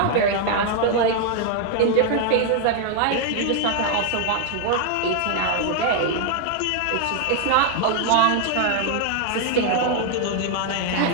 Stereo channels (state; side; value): different; both; correlation 0.00